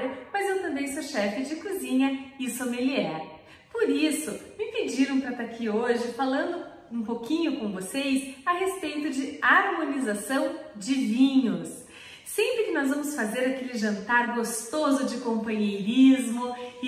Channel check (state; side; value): identical; both; correlation 1.00